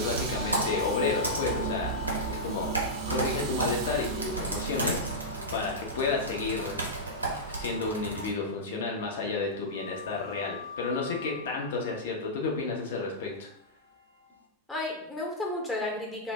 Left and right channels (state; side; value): normal; both; correlation -0.11